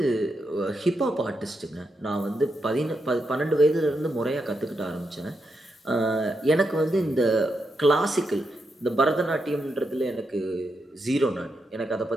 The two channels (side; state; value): both; normal; correlation 0.83